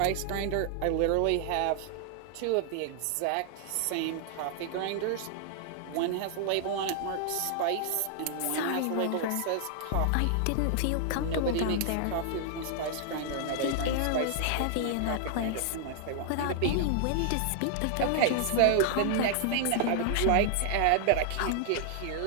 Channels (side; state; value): both; different; correlation 0.00